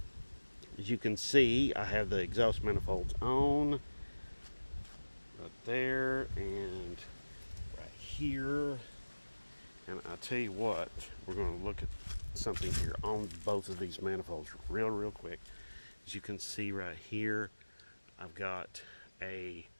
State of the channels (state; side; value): inverted; both; correlation -1.00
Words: you can see, I have the exhaust manifolds on right there and right here. And I tell you what, we're going to look at something here on both of these manifolds real quick. As you can see right here, I've got a